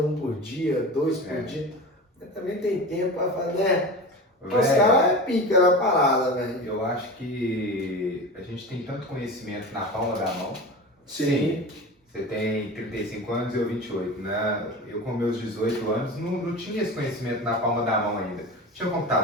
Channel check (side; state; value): both; normal; correlation 0.30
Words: por dia, 2 por dia. Mas também tem tempo pra fazer, né? Os caras é pica na parada, velho. Eu acho que a gente tem tanto conhecimento na palma da mão. Sim. Você tem 35 anos e eu 28, né? Eu com meus 18 anos não tinha esse conhecimento na palma da mão ainda. Tinha